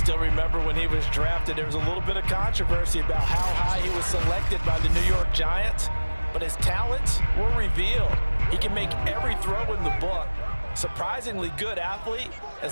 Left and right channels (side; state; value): both; inverted; correlation -1.00